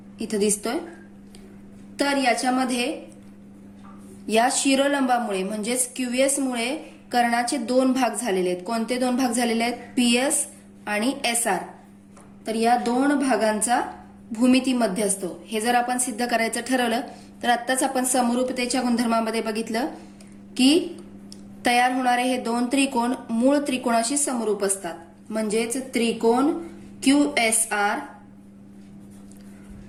इथं दिसतोय. तर याच्यामध्ये या शिरोलंबामुळे म्हणजेच QS मुळे कर्णाचे दोन भाग झालेले आहेत. कोणते दोन भाग झालेले आहेत? PS आणि SR. तर या दोन भागांचा भूमितीमध्ये असतो. हे जर आपण सिद्ध करायचं ठरवलं तर आत्ताच आपण समरूपतेच्या गुणधर्मामध्ये बघितलं की तयार होणारे हे दोन त्रिकोण मूळ त्रिकोणाशी समरूप असतात. म्हणजेच त्रिकोण QSR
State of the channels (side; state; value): both; identical; correlation 1.00